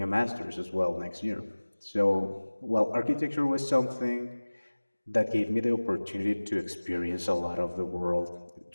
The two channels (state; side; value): inverted; both; correlation -1.00